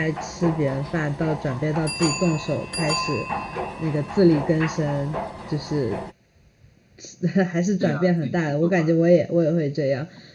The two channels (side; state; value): both; identical; correlation 1.00